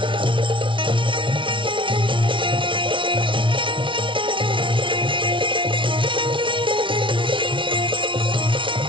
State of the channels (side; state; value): left; late; 0.25 ms